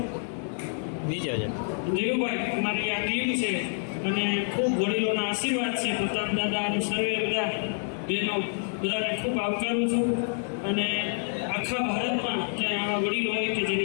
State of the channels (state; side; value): silent; right; 60 dB below the other